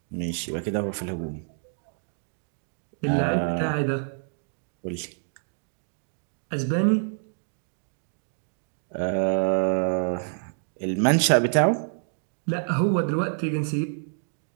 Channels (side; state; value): left; silent; digital silence